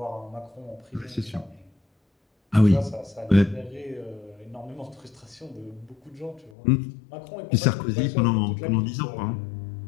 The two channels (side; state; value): right; drops out; at 6.5 s